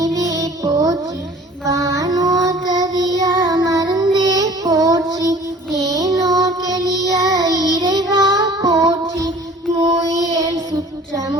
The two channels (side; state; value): both; normal; correlation 0.49